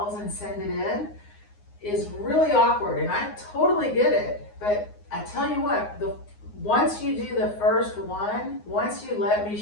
and send it in is really awkward, and I totally get it. But I tell you what, once you do the first one, once you let me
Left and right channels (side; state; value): right; late; 9.6 ms